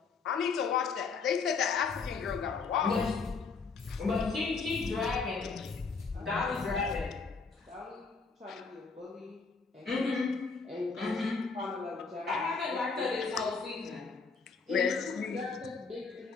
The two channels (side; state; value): right; quieter; 4.8 dB